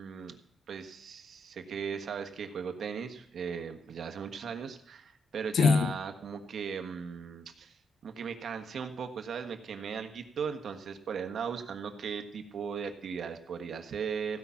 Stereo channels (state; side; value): normal; both; correlation 0.76